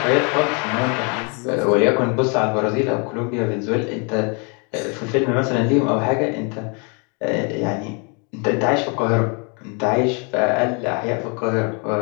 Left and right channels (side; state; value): right; quieter; 35.2 dB